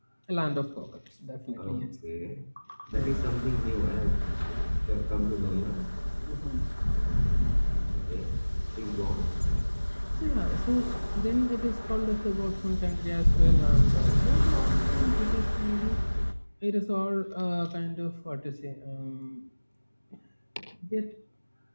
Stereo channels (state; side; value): inverted; both; correlation -1.00